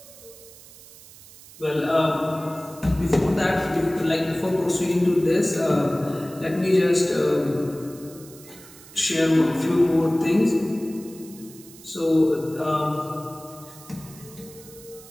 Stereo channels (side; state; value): right; noise; hiss, 20 dB below the sound